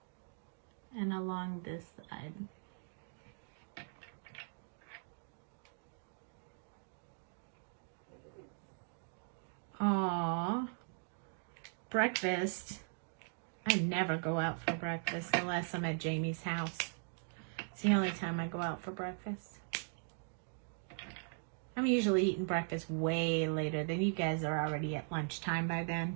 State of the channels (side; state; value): left; silent; 51 dB below the other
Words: and along this side. Aww. Breakfast. I never go out for breakfast unless I'm at Jamie's house. It's the only time I go out for breakfast. I'm usually eating breakfast way later than you guys are already at lunchtime by